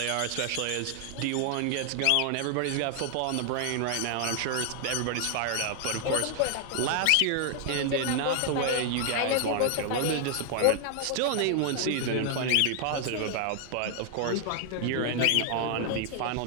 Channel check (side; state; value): both; different; correlation 0.00